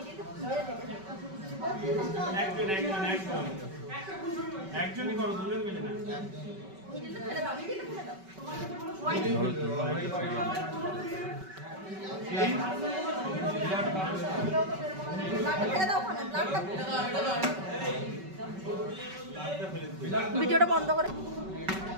একজনই করো, দুজন মিলে না। ভিডিওটা বন্ধ করে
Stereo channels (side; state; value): left; late; 5.3 ms